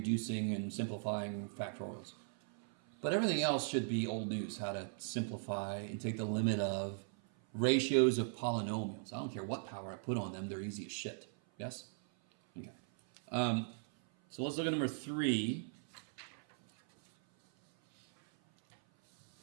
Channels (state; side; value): silent; left; 52 dB below the other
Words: and simplifying factorials. But everything else should be old news, how to simplify and take the limit of ratios of polynomials. I don't care what power I put on them, they're easy as shit. Yes? Okay. So let's look at number 3.